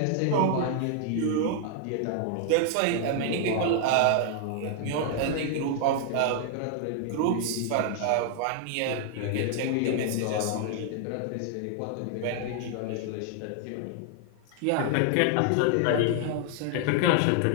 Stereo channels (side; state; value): both; different; correlation 0.00